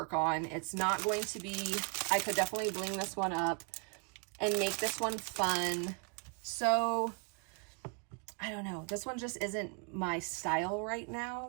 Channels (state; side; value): quieter; left; 35.4 dB